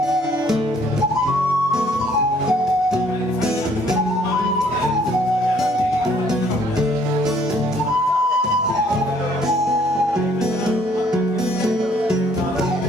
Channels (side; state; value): both; normal; correlation 0.62